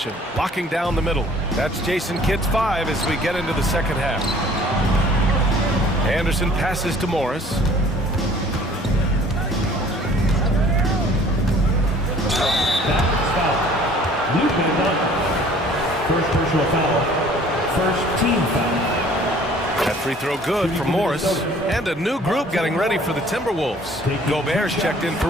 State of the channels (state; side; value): normal; both; correlation 0.53